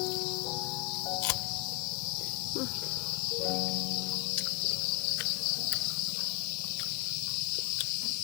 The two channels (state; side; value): quieter; right; 24.2 dB